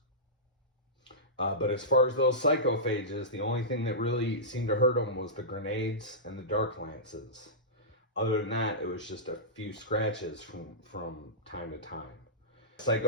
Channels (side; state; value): both; normal; correlation -0.16